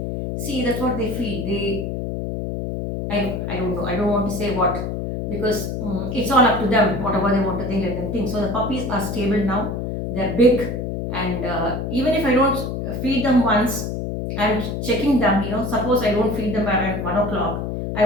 See, that's what they feed. I don't know. I don't want to say what, because it's all up to them. Whatever they want to think, let them think. So the puppies are stable now. They're big, and even if I don't feed them once, I'm checking them. Suppose I don't feed them around 1 o'clock. I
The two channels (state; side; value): noise; left; hum, 3 dB below the sound